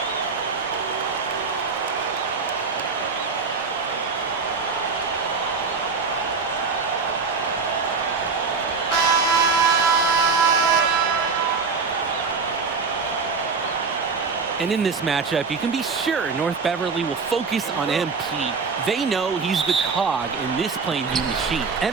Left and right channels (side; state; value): left; quieter; 4.9 dB